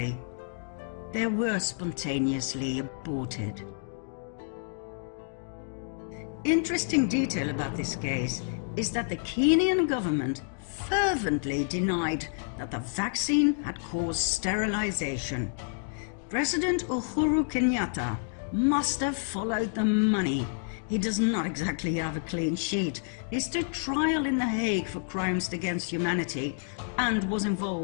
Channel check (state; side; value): silent; right; digital silence